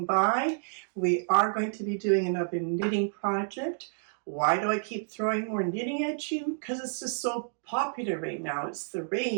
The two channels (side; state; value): left; silent; digital silence